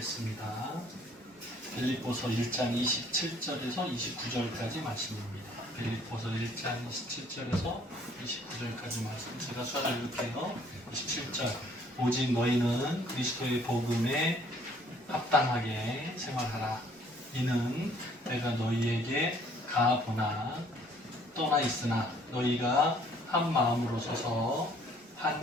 보겠습니다. 빌립보서 1장 27절에서 29절까지 말씀입니다. 빌립보서 1장 27절에서 29절까지 말씀. 제가 수화를 읽을게요. 27절. 오직 너희는 그리스도의 복음에 합당하게 생활하라. 이는 내가 너희에게 가보나 떠나 있으나 너희가 한 마음으로 서서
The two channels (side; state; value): both; normal; correlation 0.60